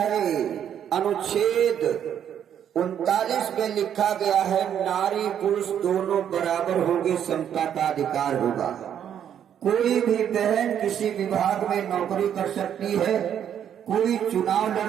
अनुच्छेद 39 में लिखा गया है, नारी पुरुष दोनों बराबर होंगे, समता का अधिकार होगा। कोई भी बहन किसी विभाग में नौकरी कर सकती है, कोई चुनाव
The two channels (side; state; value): left; quieter; 9.3 dB